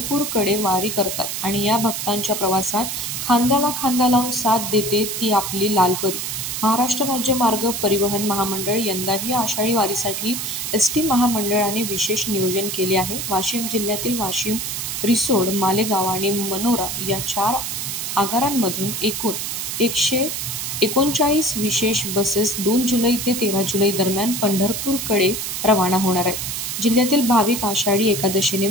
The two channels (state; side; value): noise; right; hiss, 4 dB below the sound